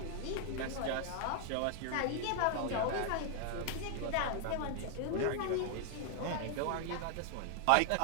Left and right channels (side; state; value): both; different; correlation 0.00